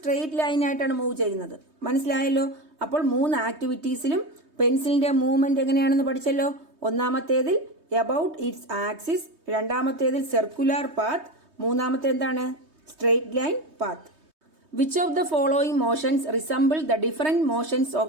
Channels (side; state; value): left; late; 3.2 ms